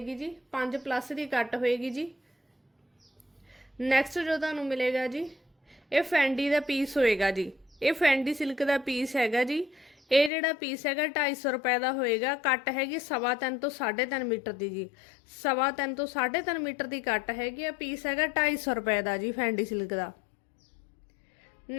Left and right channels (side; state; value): right; drops out; at 10.3 s